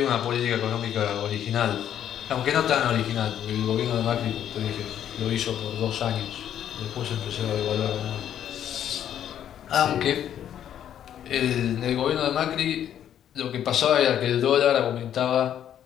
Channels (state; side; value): quieter; right; 10.1 dB